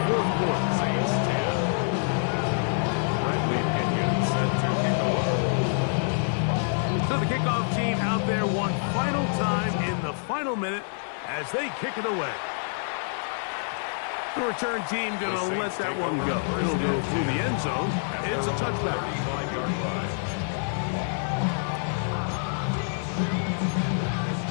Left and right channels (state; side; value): silent; right; 60 dB below the other